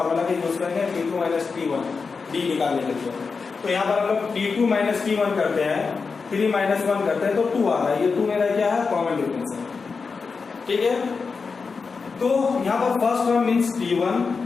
का यूज करेंगे T2 माइनस T1 डी निकालने के लिए। तो यहाँ पर हम लोग T2 माइनस T1 करते हैं, 3 माइनस 1 करते हैं तो 2 आ रहा है। ये 2 मेरा क्या है कॉमन डिफरेंस है। ठीक है, तो यहाँ पर फर्स्ट टर्म मीन्स T1,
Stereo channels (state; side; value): quieter; right; 4.9 dB